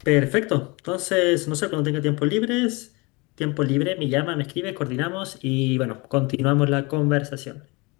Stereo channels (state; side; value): quieter; right; 26.8 dB